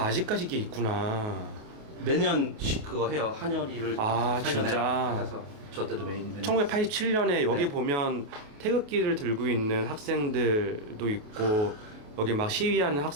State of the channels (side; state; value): left; late; 28 ms